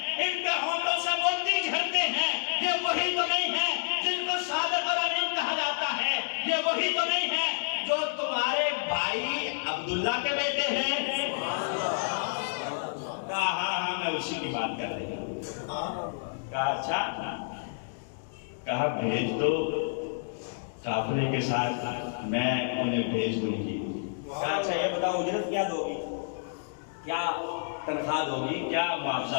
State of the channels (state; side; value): silent; right; digital silence